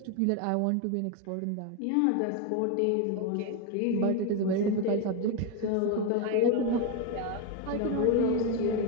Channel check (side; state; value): both; different; correlation 0.02